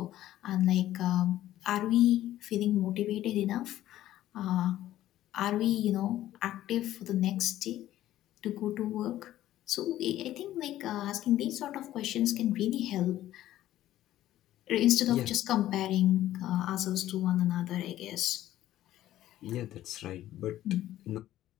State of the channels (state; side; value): quieter; right; 13.7 dB